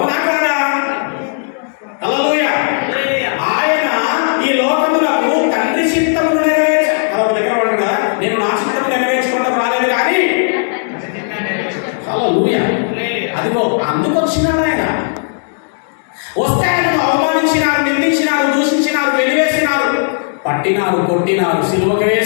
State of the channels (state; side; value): silent; right; digital silence